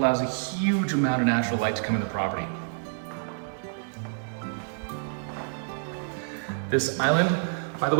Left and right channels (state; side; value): silent; left; 60 dB below the other